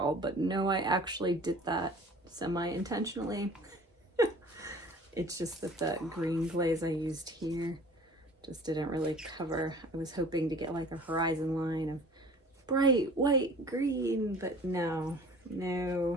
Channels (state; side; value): normal; both; correlation 0.46